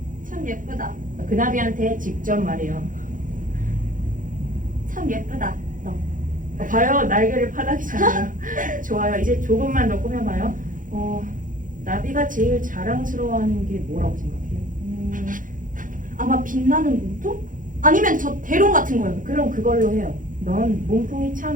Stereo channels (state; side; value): late; left; 0.39 ms